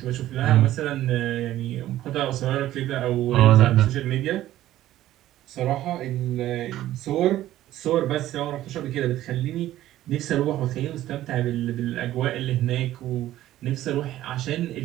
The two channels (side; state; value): left; quieter; 14.0 dB